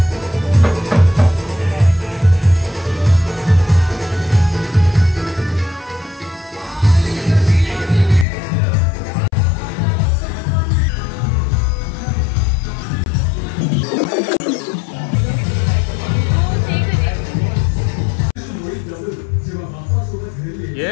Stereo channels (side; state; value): right; drops out; at 8.2 s